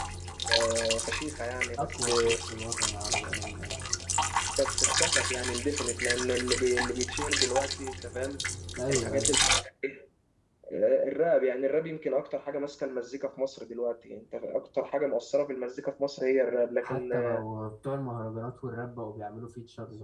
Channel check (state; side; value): identical; both; correlation 1.00